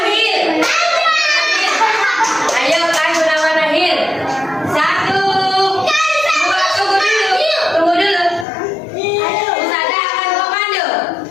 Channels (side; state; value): right; drops out; at 8.5 s